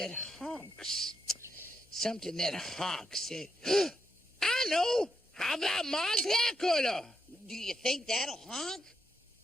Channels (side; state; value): both; normal; correlation 0.81